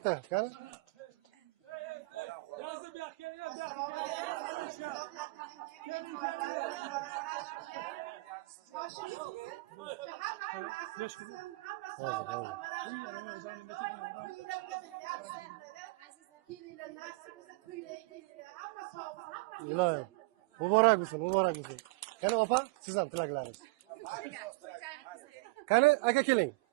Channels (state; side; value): quieter; left; 25.3 dB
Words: qani? Yozib ilohim muborak bo'lsin, muborak bo'lsin. Qani opa, siz ham tilaklaringiz. Qani aka keling.